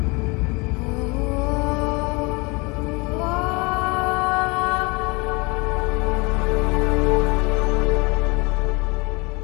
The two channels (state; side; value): quieter; right; 27.5 dB